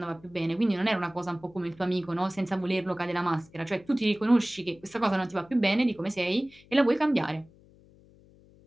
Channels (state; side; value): noise; left; hum, 27 dB below the sound